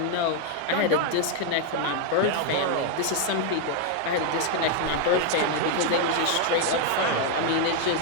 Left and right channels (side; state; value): both; different; correlation 0.01